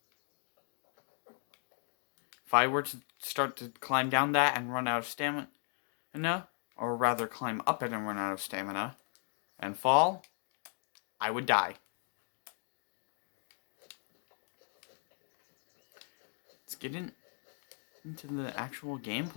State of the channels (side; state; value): right; silent; 53 dB below the other